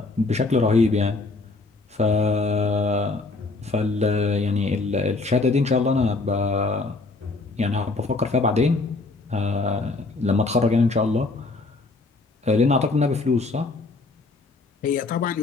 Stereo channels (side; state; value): right; quieter; 3.5 dB